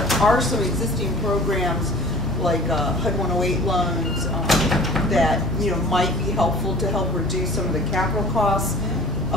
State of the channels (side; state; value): both; normal; correlation 0.46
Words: are some existing programs like HUD 108 loans that might be helpful to help reduce some of the capital costs